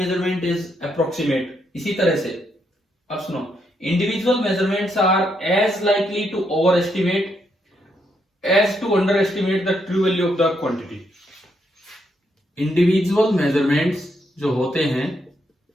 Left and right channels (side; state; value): both; normal; correlation 0.77